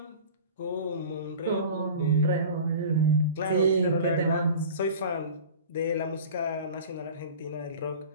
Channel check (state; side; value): inverted; both; correlation -0.39